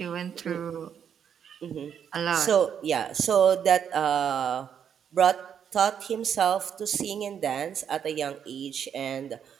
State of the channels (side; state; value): left; quieter; 8.2 dB